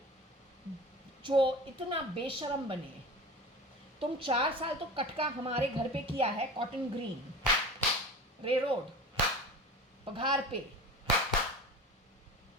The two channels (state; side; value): normal; both; correlation 0.34